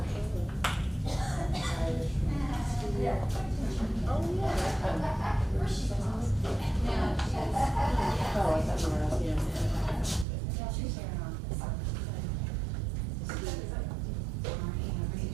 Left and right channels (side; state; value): left; drops out; at 10.2 s